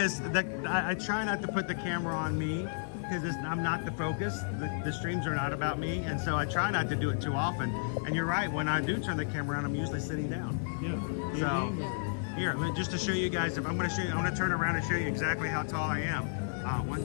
that I try not to put the camera on me because I'm not the focus. The streams are not about me, and so I try not to do it too often. And you're right, when I do turn the camera around, I'm usually sitting down. Yeah. So here, just to show you guys, if I'm going to show you, I'm going to turn around and show you exactly how tall I am.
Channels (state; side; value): silent; right; 55 dB below the other